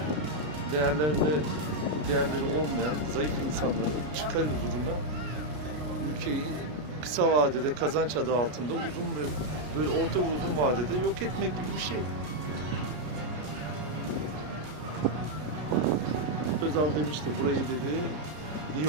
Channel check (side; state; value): left; late; 33 ms